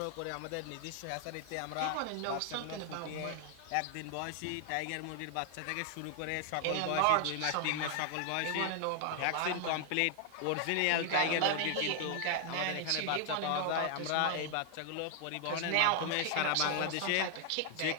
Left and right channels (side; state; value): both; different; correlation 0.00